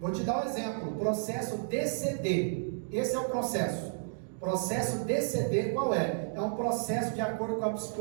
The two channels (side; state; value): left; silent; digital silence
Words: te dar um exemplo: processo DCD. Esse é o processo. Processo DCD qual é? É um processo de acordo com a